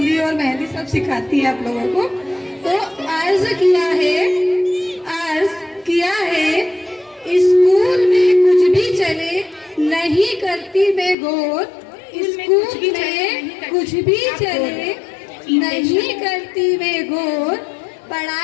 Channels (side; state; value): right; drops out; at 11.2 s